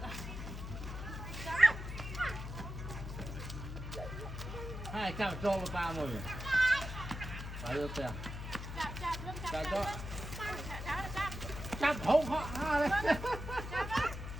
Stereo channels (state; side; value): noise; left; hum, 7 dB below the sound